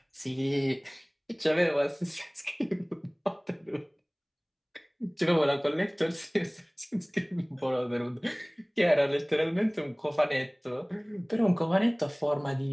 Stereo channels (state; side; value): identical; both; correlation 1.00